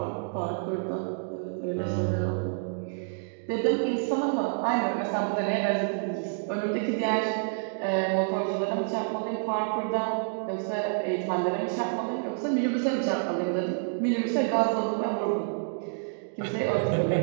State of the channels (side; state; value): left; silent; digital silence